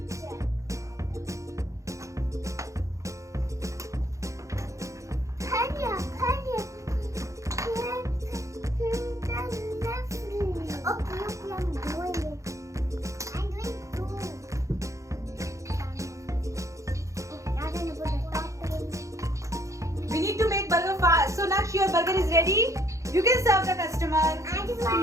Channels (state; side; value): late; left; 0.15 ms